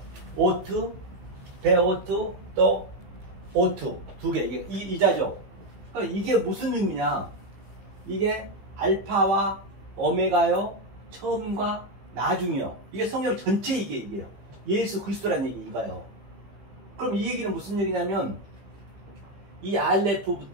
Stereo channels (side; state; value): left; late; 15 ms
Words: 오투, 베오투, 또 오투. 두 개. 이게 이자죠. 그럼 이게 무슨 의미냐? 이게 알파와 오메가요, 처음과 나중이요. 이게 성경 전체 이게요. 예수 그리스도라는 얘기 이거요. 그럼 이 얘기는 무슨 얘기냐면 이